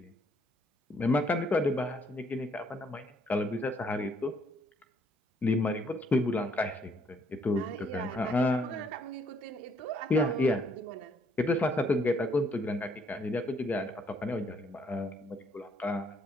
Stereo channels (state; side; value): normal; both; correlation 0.68